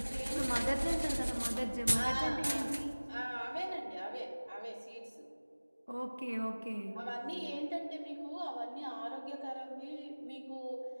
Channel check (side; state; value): both; inverted; correlation -1.00